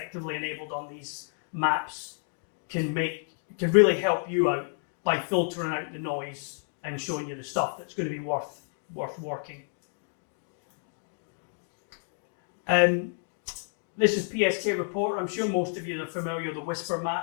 enabled on these maps can really help you out by filtering out the noise and showing you the stuff that's going to be worth working. This is PSK Reporter. I'm sure most of you are familiar with the Whisper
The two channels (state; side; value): silent; right; digital silence